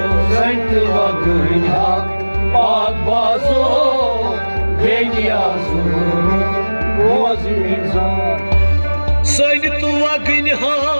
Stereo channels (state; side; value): inverted; both; correlation -1.00